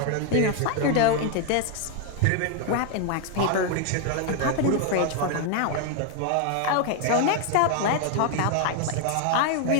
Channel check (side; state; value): both; different; correlation 0.00